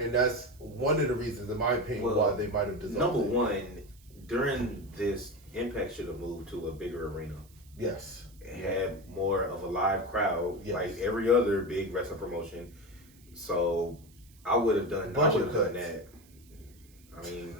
that's one of the reasons, in my opinion, why they might have dissolved. Number one, during this, Impact should have moved to a bigger arena. Yes. Had more of a live crowd, like every other big wrestling promotion. So I would have done that. I mean,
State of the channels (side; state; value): right; noise; hiss, 27 dB below the sound